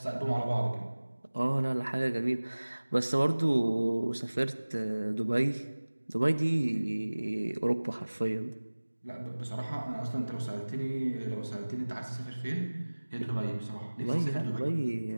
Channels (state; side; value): inverted; both; correlation -1.00